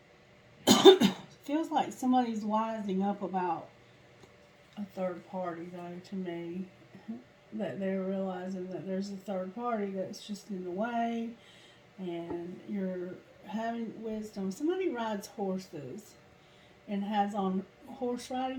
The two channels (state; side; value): identical; both; correlation 1.00